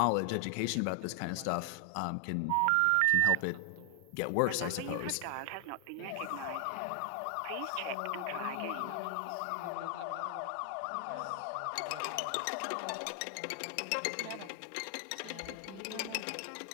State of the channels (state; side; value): different; both; correlation 0.00